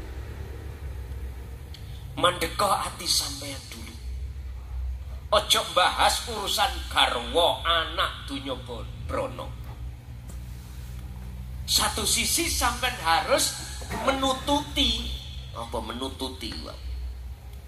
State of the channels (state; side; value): identical; both; correlation 1.00